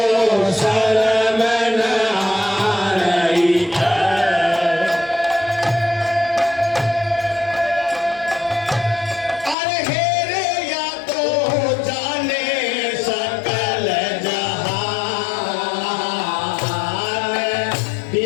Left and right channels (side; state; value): right; drops out; at 9.6 s